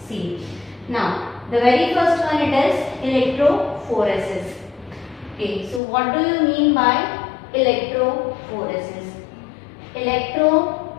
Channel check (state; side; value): drops out; right; at 5.8 s